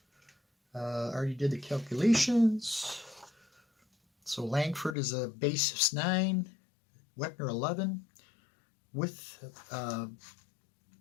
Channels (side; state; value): right; drops out; at 5.0 s